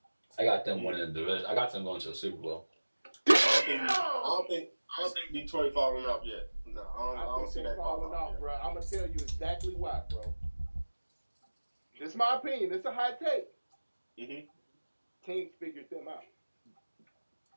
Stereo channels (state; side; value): inverted; both; correlation -1.00